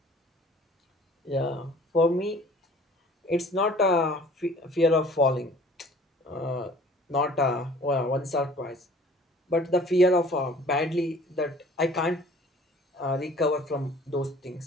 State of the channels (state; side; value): normal; both; correlation 0.51